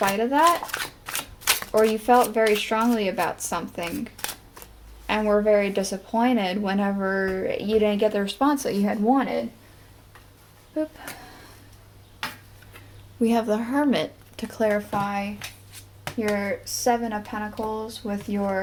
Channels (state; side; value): identical; both; correlation 1.00